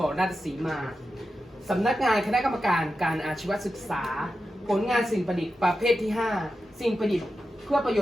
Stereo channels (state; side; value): normal; both; correlation 0.90